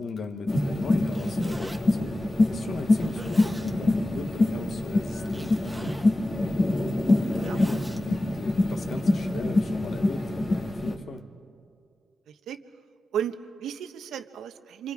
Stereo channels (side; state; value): both; normal; correlation 0.94